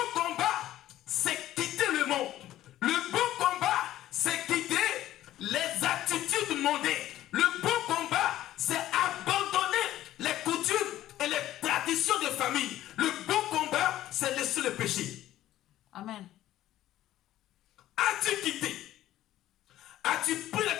combat, c'est quitter le monde. Le bon combat, c'est quitter les attitudes mondaines. Le bon combat, c'est abandonner les coutumes et les traditions de famille. Le bon combat, c'est laisser le péché. Amen. As-tu quitté? As-tu pris la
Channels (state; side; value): quieter; right; 13.7 dB